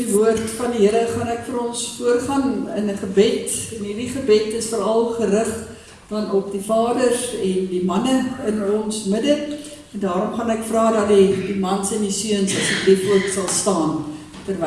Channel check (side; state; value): both; identical; correlation 1.00